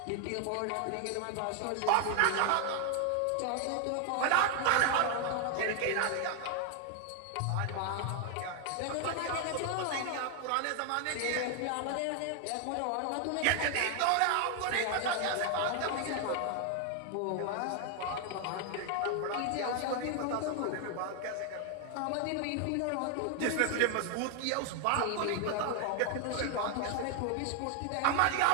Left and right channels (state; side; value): different; both; correlation 0.00